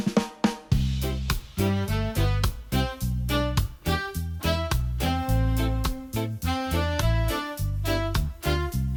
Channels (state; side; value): identical; both; correlation 1.00